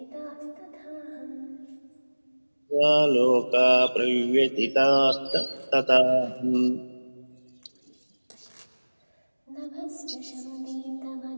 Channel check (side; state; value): both; inverted; correlation -1.00